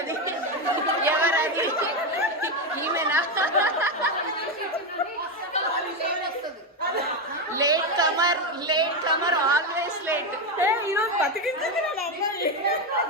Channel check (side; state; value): both; normal; correlation 0.10